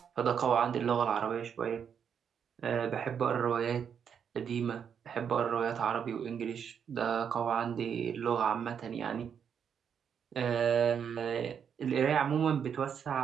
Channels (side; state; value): left; quieter; 7.6 dB